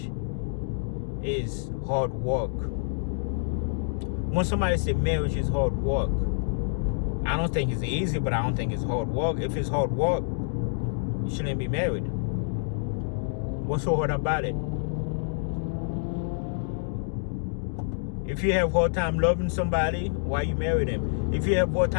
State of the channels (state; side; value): silent; right; digital silence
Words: is hard work. When somebody say marriage is hard work, I don't think it's easy, but I don't think it's hard work. If it's hard work, you shouldn't be married. What's so hard about it? If you have hard time loving somebody, why you marry them? If you have hard